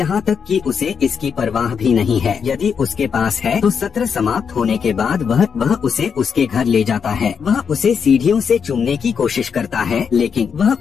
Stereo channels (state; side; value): quieter; right; 6.7 dB